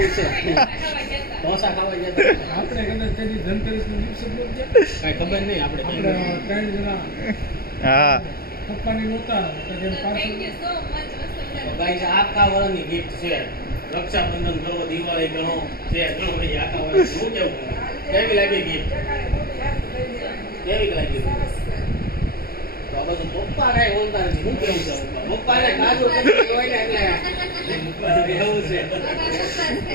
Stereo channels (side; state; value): right; late; 0.44 ms